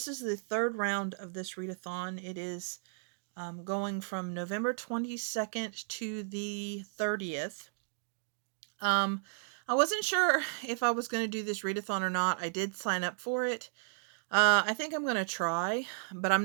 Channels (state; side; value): silent; left; digital silence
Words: is the third round of this readathon. It is going from November 22nd to the 30th. I wasn't sure if I was going to do this readathon or not. I did sign up for it. I think I'm going to try, but